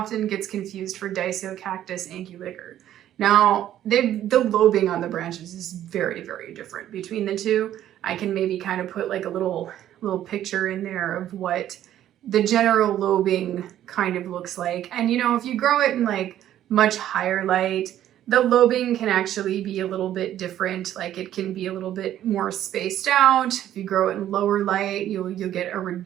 gets confused for Cactus anguliger. Now, the lobing on the branches is very, very different between the two. I can maybe kind of put like a little picture in there of what the general lobing kind of looks like. And you know, if you grow it in like much higher light, the lobing can actually be a little bit different. Like it can be a little bit more spaced out. If you grow it in lower light, you'll get a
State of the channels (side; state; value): left; quieter; 11.9 dB